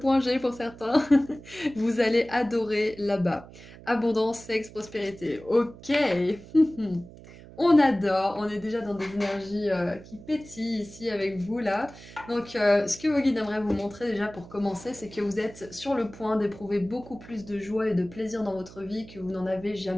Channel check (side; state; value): right; noise; hum, 18 dB below the sound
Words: G pour certains. Vous allez adorer là-bas. Abondance, sexe, prospérité. Ok. On adore, on est déjà dans des énergies qui pétillent ici avec vous là. Donc ce que vos guides aimeraient vous montrer déjà pour commencer, c'est que vous êtes sur le point d'éprouver beaucoup plus de joie et de plaisir dans votre vie que vous n'en avez